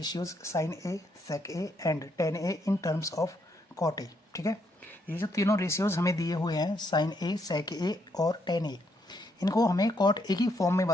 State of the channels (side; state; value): both; normal; correlation 0.75